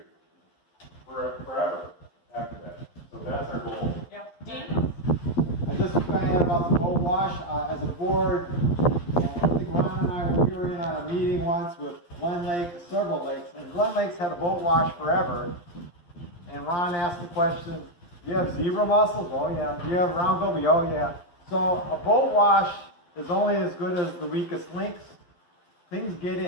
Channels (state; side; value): late; right; 11 ms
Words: forever after that. So that's our goal. Yeah. Dean? I just kind of had about the boat wash. As a board, I think Ron and I were in on a meeting once with Glen Lake, several lakes, and Glen Lake's had a boat wash forever. And Ron asked the question, do you have zebra mussels? Oh yeah. Do you have round goby? Oh yeah. So a boat wash is only as good as the weakest links. Things get